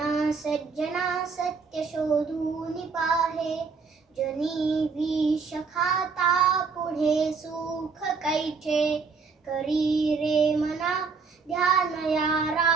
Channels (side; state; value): left; quieter; 5.0 dB